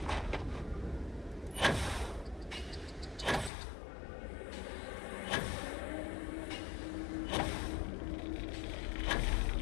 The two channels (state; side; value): drops out; right; at 3.5 s